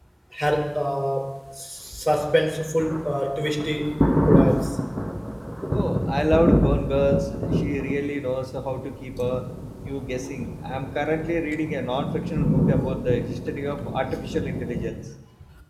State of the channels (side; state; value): both; identical; correlation 1.00